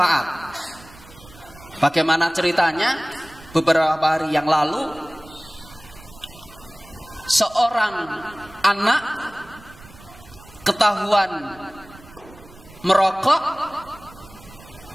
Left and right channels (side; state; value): right; noise; rumble, 21 dB below the sound